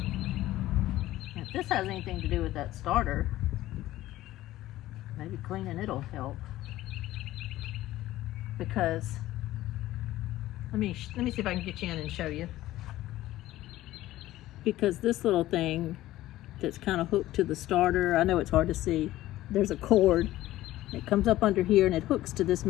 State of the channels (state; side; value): quieter; right; 15.5 dB